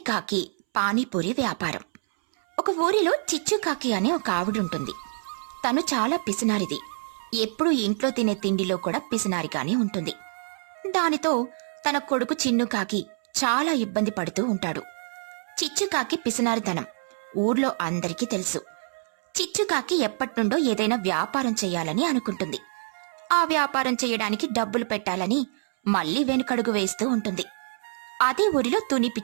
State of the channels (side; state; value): left; silent; 61 dB below the other